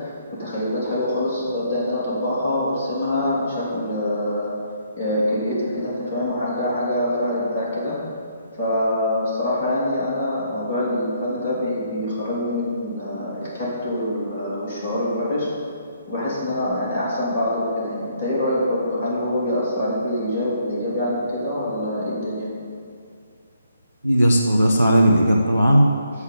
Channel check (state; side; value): inverted; both; correlation -0.72